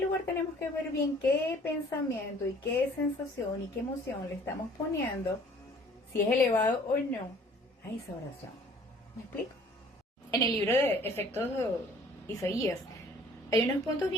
lugar, tenemos que ver bien qué pensamiento y qué sensación y qué emoción le estamos poniendo, si es elevado o no, a esa oración. ¿Me explico? En el libro de Efectos de Isaías hay unos puntos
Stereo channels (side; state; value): both; normal; correlation 0.54